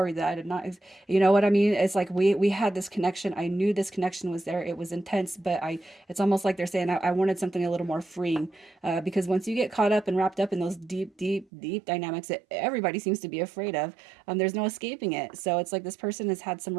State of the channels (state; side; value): drops out; left; at 11.5 s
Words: that I did not, you know what I mean? It's like we had this connection. I knew this connection was there. It was intense, but it's almost like they're saying I wanted something a little more freeing, because once you get caught up and wrapped up in those deep, deep, deep dynamics that everybody seems to be afraid of, there's no escaping it. So it's like this person has had some